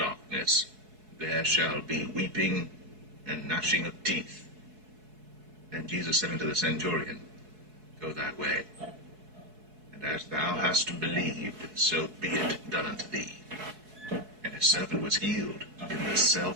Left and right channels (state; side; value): late; left; 4.7 ms